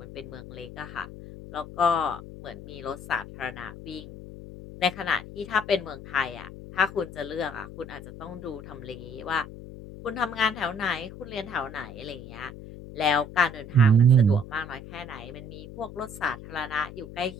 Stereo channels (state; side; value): noise; left; hum, 13 dB below the sound